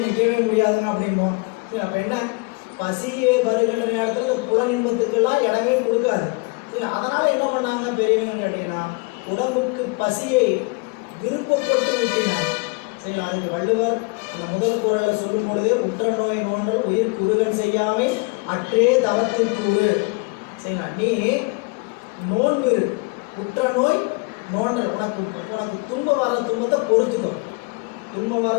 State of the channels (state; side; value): quieter; right; 28.9 dB